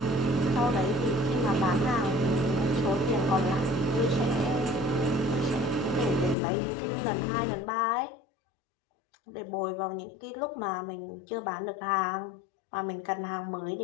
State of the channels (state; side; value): drops out; right; at 6.4 s